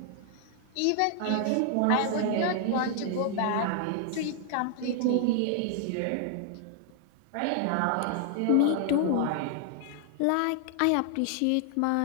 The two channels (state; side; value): different; both; correlation 0.00